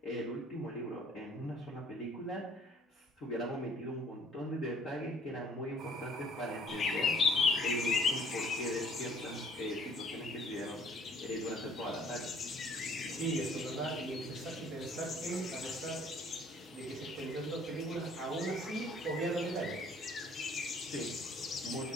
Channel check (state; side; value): normal; both; correlation 0.57